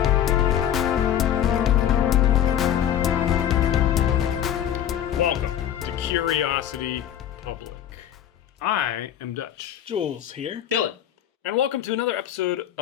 Welcome to Curiosity Public. I am Dutch. Jules here. Dylan. And welcome to another episode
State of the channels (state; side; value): quieter; right; 10.4 dB